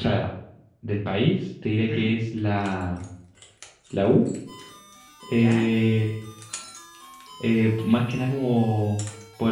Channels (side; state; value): both; identical; correlation 1.00